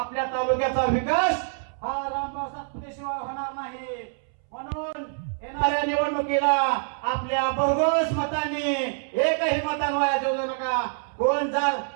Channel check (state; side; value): silent; left; 61 dB below the other